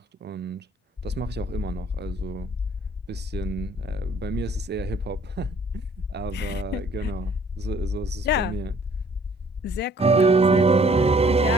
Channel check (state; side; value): normal; both; correlation 0.58